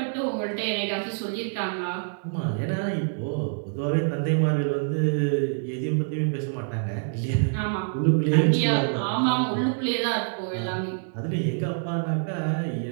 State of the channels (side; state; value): left; silent; digital silence